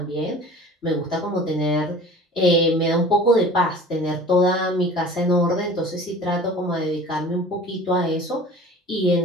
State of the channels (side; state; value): both; normal; correlation 0.42